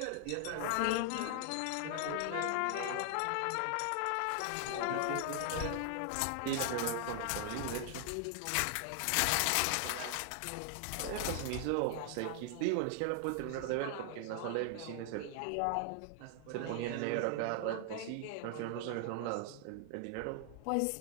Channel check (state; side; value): different; both; correlation 0.00